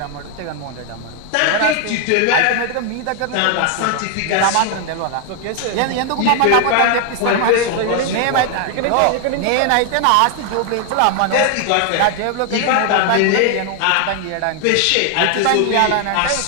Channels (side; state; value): both; different; correlation 0.00